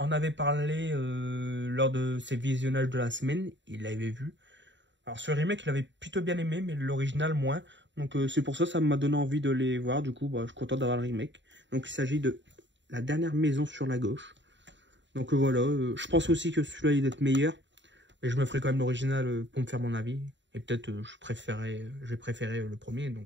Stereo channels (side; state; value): left; late; 0.53 ms